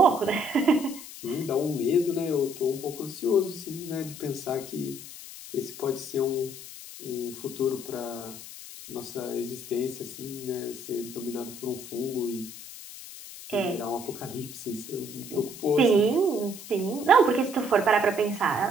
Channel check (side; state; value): left; noise; hiss, 13 dB below the sound